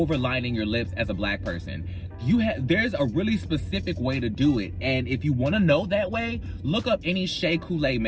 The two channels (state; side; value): identical; both; correlation 1.00